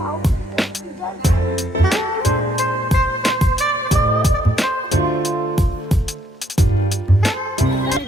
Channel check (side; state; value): both; normal; correlation 0.70